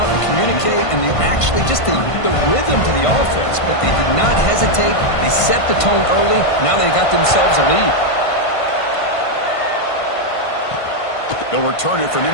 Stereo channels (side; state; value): right; late; 1.5 ms